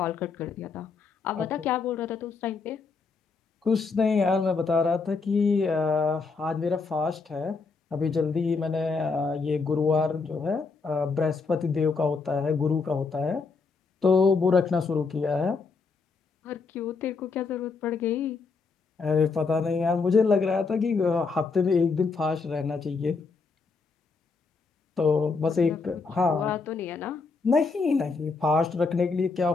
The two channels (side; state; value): right; quieter; 4.5 dB